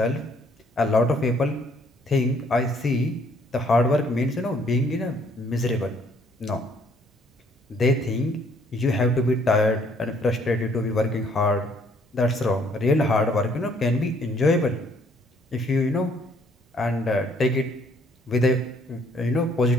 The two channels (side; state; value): both; normal; correlation 0.64